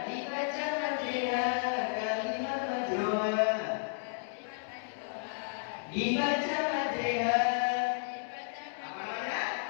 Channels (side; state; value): right; silent; digital silence